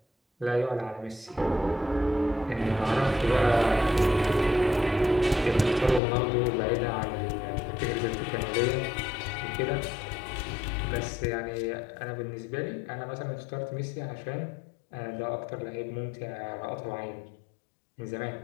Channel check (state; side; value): drops out; right; at 6.0 s